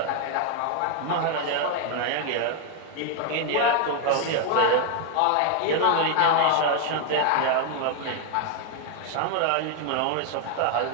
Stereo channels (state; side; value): different; both; correlation 0.00